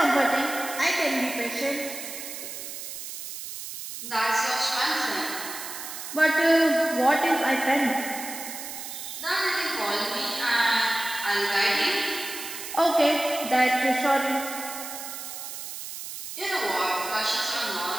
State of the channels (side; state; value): right; noise; hiss, 9 dB below the sound